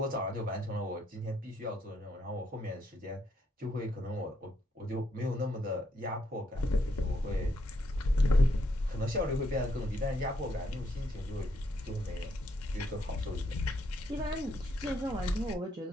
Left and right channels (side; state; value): both; normal; correlation 0.75